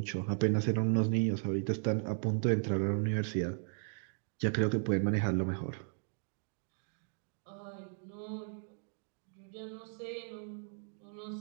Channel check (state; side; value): silent; left; 54 dB below the other